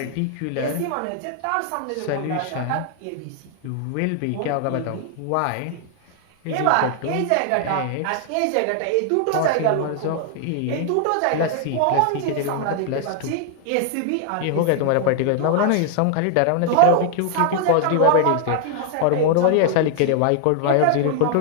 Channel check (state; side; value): different; both; correlation 0.00